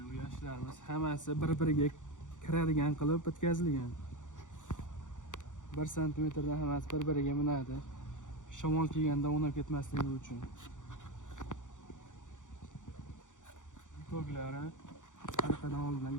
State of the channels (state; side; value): late; right; 0.86 ms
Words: bu yashiklarimiz hammasi bir-biriga kiradigan qilib bitkazilgan. 1 cm dan hammasi bir-biriga minadi. Shamol kelganda o'ynab ketmasligi uchun. Bitoglari orqadan oldindan